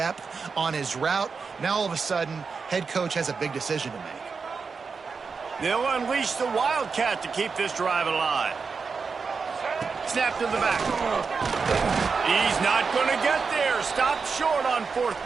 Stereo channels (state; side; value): quieter; left; 5.1 dB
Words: on his route. Now, all of a sudden, head coach has a big decision to make. They'll unleash the Wildcat to keep this drive alive. Snap to the back. He's not going to get there. Stopped short on 4th